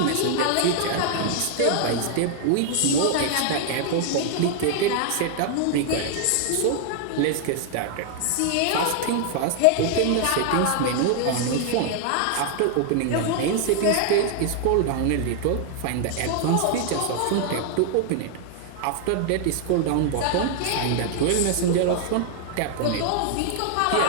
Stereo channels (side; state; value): both; different; correlation 0.00